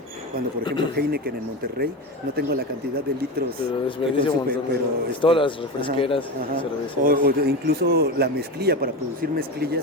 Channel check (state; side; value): normal; both; correlation 0.22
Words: cuando por ejemplo Heineken en Monterrey, no tengo la cantidad de litros, pero desperdicia un montón, pero todas las refresqueras, cervezas. O incluso la mezclilla, para producir mezclilla